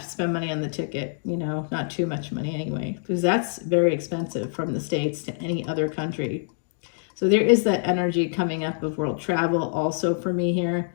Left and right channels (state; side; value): silent; right; digital silence